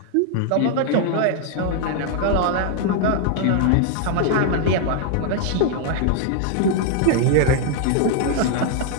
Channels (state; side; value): different; both; correlation 0.00